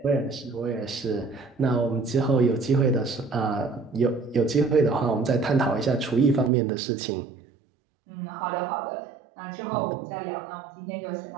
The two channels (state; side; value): drops out; left; at 6.5 s